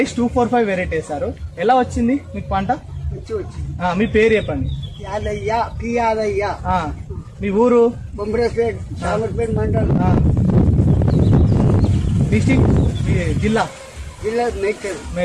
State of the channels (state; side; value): identical; both; correlation 1.00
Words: 245 వెరైటీ వేశారు. ఎలా వచ్చింది మీకు పంట? మీ పేరు చెప్పండి. యాదయ్య పి యాదయ్య. మీ ఊరు? బొంబరేపేట్ సామర్పేట్ మండల్, డిస్ట్రిక్ట్, జిల్లా